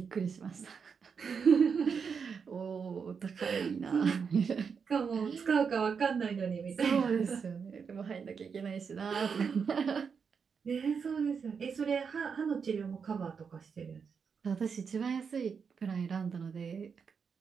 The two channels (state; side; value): quieter; left; 6.1 dB